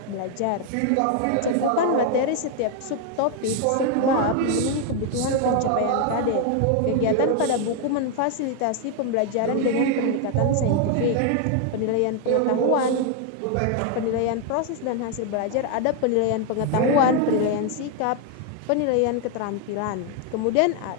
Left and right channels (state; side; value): different; both; correlation 0.01